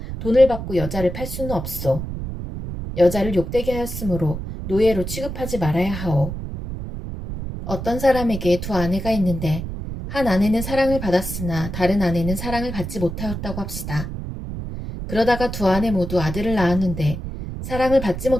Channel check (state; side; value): noise; right; rumble, 7 dB below the sound